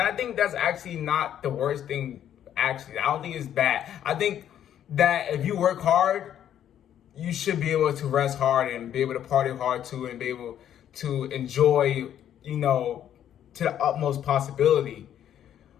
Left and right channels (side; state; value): right; quieter; 10.4 dB